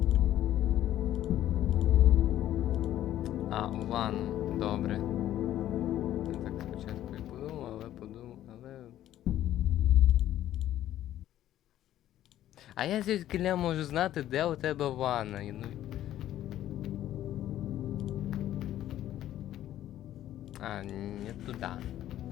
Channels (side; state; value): right; quieter; 12.6 dB